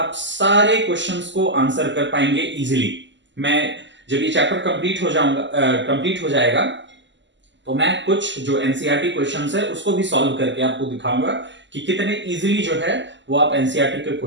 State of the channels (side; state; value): left; late; 0.53 ms